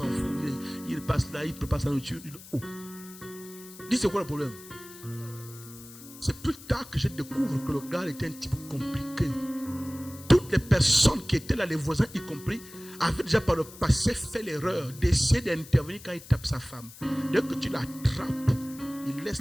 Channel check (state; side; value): noise; left; hiss, 18 dB below the sound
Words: fout. Il passe là, il prépare sa nourriture. Il dit, oh. Dis, c'est quoi le problème? C'est plus tard que je découvre que le gars était un type compliqué. Toutes les personnes qui étaient là, les voisins y compris, avaient déjà par le passé fait l'erreur d'essayer d'intervenir quand il tape sa femme. Dès que tu l'attrapes, il laisse